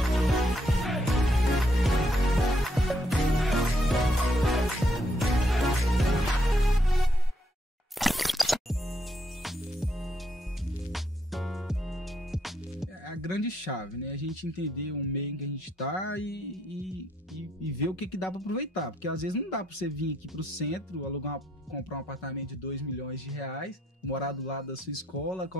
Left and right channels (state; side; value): normal; both; correlation 0.75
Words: A grande chave, né? A gente entender o meio em que a gente tá e ver o que dá para aproveitar. Porque às vezes não dá para você vir aqui pro centro, comprar um apartamento de 2 milhões de reais, morar do lado da sua escola,